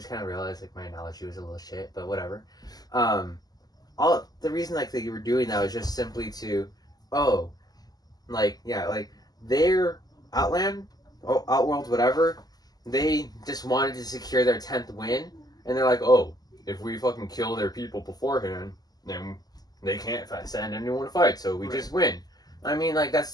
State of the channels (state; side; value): late; right; 0.19 ms